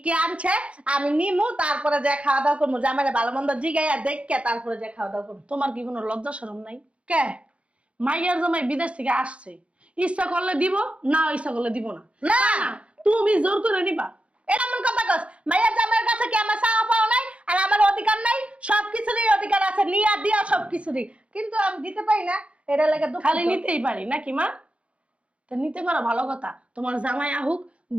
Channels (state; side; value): late; left; 0.061 ms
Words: কি আনছে আমি নিমু, তারপরে যে খাওয়া দাওয়া করবো। জামাইরে ভালো মন্দ জিগাইয়া দেখে তারপরে যে খাওয়া দাওয়া করবো। তোমার কি কোনো লজ্জা শরম নাই? কে? মাইয়ার জামাই বিদেশ থেকে আসছে, ইচ্ছা করলে দিব, না ইচ্ছা করলে দিব না। না তুমি জোর করে নিবা? এটা এমন কথা কস? মাইয়ার জামাইয়ের কাছে কি আমার চাওয়া পাওয়া নাই আর আমার অধিকার নাই? সবকিছুরই অধিকার আছে, নিয়া দিয়া সবকিছুরই, কিন্তু আমি দিতে পারি না। এটা লাগে দুঃখ। খালি নিতেই পারি নাকি মা? তা নিতে পারো, ভালো কথা। তোমার জামাই আহুক,